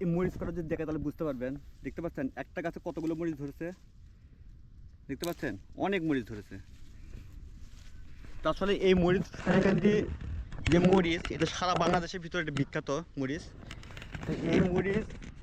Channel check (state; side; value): identical; both; correlation 1.00